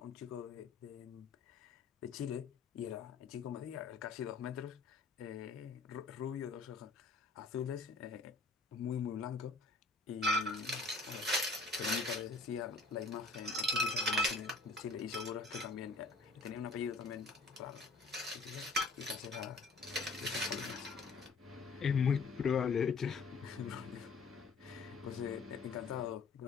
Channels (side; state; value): right; quieter; 3.9 dB